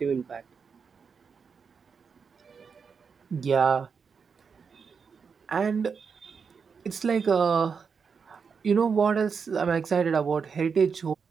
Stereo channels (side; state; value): left; quieter; 5.9 dB